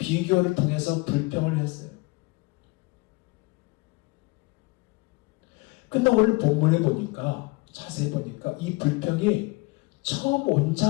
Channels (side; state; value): right; quieter; 24.9 dB